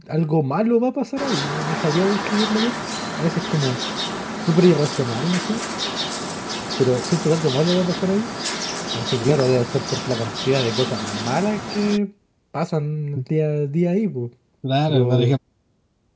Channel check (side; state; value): both; identical; correlation 1.00